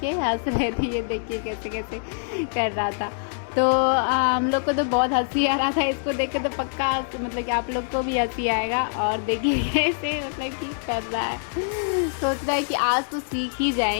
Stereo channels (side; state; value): right; silent; digital silence